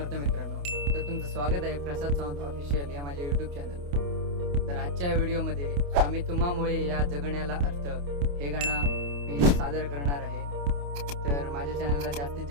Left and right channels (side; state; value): left; late; 28 ms